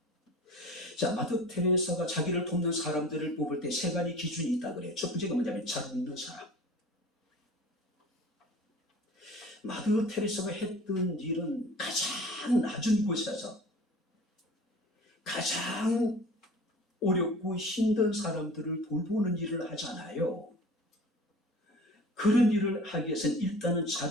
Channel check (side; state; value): both; normal; correlation 0.42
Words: 자, 마더 테레사가 자기를 돕는 사람들을 뽑을 때 세 가지 기준이 있다 그래요. 첫 번째가 뭐냐면 잘 웃는 사람. 마더 테레사가 했던 일은 가장 낮은 곳에서 가장 어렵고 힘든 사람들을 돌보는 일을 하잖아요. 그런 일을 하기 위해서는 일단은